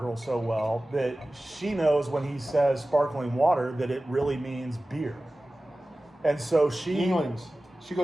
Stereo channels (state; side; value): normal; both; correlation 0.96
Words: girl so well that she knows when he says sparkling water that it really means beer. And so she